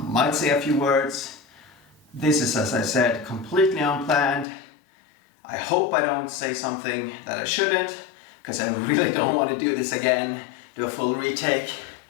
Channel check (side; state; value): right; drops out; at 4.5 s